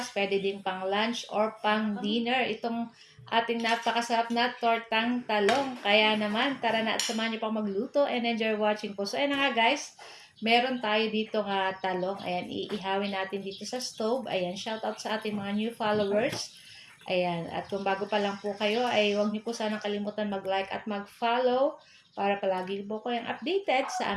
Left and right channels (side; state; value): both; identical; correlation 1.00